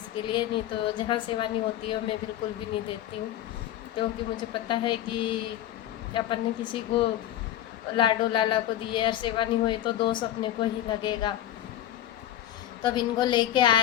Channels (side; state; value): right; quieter; 12.5 dB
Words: लिए। नहीं तो जहाँ सेवा नहीं होती है मैं बिल्कुल भी नहीं देती हूँ, क्योंकि मुझे पता है कि अपन ने किसी को लाडो लाला को दिए और सेवा नहीं हुई तो दोष अपने को ही लगेगा। तो अब इनको लेके